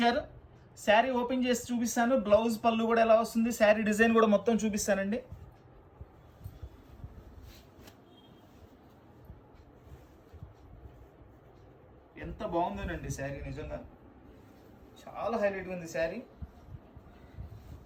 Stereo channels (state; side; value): identical; both; correlation 1.00